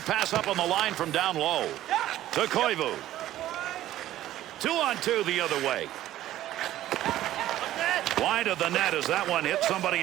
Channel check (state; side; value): quieter; left; 13.7 dB